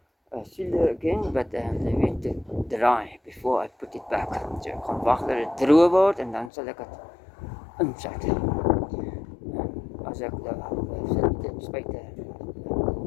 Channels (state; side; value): drops out; right; at 6.5 s